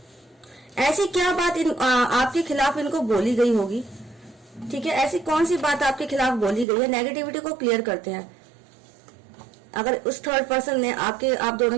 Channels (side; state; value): left; drops out; at 6.7 s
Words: ऐसी क्या बात आपके खिलाफ इनको बोली गई होगी, ठीक है। ऐसी कौन सी बात आपके खिलाफ बोली गई है, नेगेटिविटी को क्लियर करते हैं। अगर उस थर्ड पर्सन ने आप दोनों